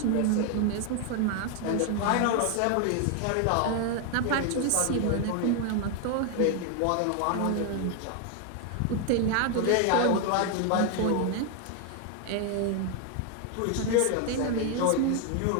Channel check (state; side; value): different; both; correlation 0.01